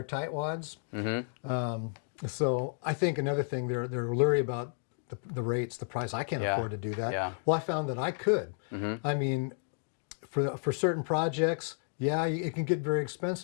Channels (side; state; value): right; silent; digital silence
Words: tightwads. So I think another thing, they're leery about the rates, the price. I can't afford to do that. Yeah. Well, I found that I could. I mean, for certain projects, it can get very